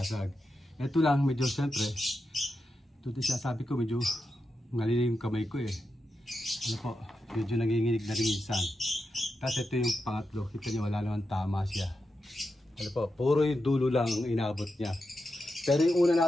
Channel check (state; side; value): normal; both; correlation 0.88